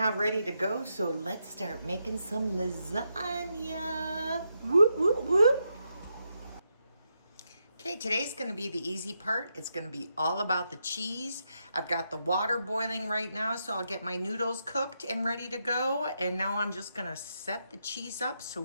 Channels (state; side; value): inverted; both; correlation -0.83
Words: ready to go. So let's start making some lasagna. Whoop, whoop, whoop. Okay, today's going to be the easy part. It's going to be all about the cheese. I've got the water boiling right now, so I'll get my noodles cooked and ready to go. And now I'm just going to set the cheese up so